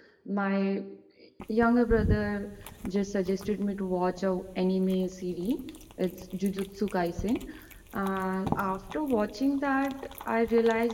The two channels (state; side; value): identical; both; correlation 1.00